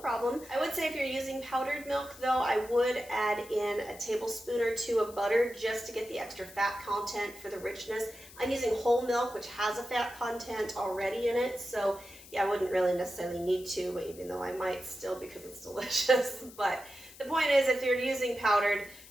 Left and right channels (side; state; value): left; noise; hiss, 19 dB below the sound